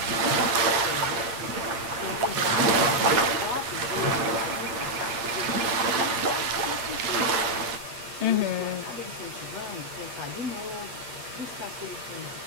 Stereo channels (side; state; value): left; late; 8.7 ms